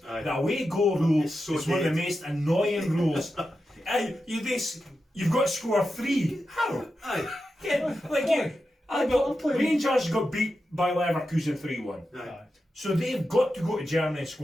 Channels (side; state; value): both; normal; correlation 0.90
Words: Aye. The away goal rule It's so is one of the dead. most annoying rules. Aye, you've got to score 3. How? Aye. Yeah, like you. I'm playing- Rangers got beat by Leverkusen 3-1. Aye. So they've got to go to Germany and